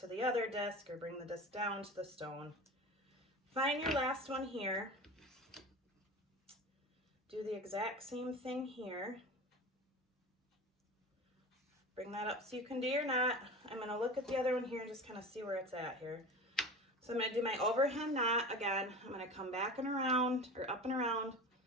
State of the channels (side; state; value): both; normal; correlation 0.32